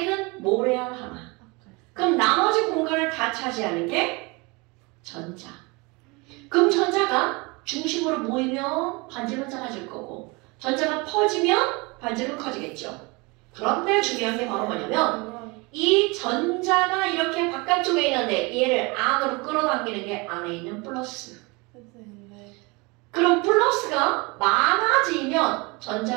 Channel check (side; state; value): left; quieter; 26.9 dB